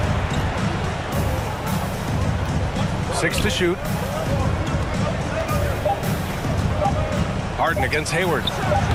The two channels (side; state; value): both; identical; correlation 1.00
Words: Harden against Hayward.